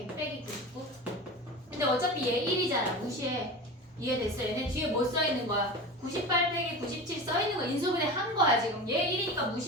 빼기 99. 근데 어차피 얘 1이잖아. 무시해. 이해됐어? 얘네 뒤에 뭐 써있는 거야? 98 빼기 97 써있는 거 인수분해 한 거야 지금. 얘 1이니까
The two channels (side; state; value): both; normal; correlation 0.30